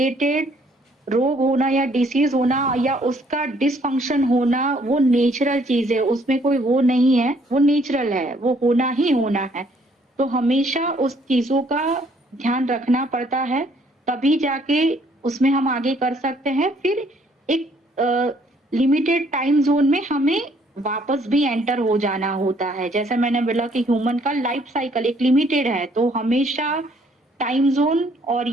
रोग होना या डिसीज होना या उसका डिसफंक्शन होना वो नेचुरल चीज है, उसमें कोई वो नहीं है, वो नेचुरल है, वो होना ही होना है। तो हमेशा उस चीजों का ध्यान रखना पड़ता है, तभी जाके उसमें हम आगे कर सकते हैं। फिर एक लिमिटेड टाइम जोन में हमें वापस भी एंटर हो जाना होता है। जैसे मैंने बोला कि ह्यूमन का लाइफ साइकिल एक लिमिटेड है, तो हमेशा टाइम जोन और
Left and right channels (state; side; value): normal; both; correlation 0.64